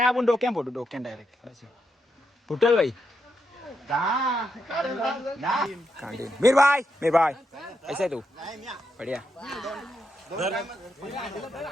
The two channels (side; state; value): both; normal; correlation 0.83